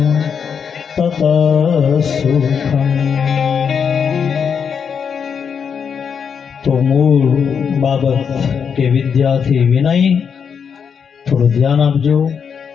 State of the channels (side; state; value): right; quieter; 6.8 dB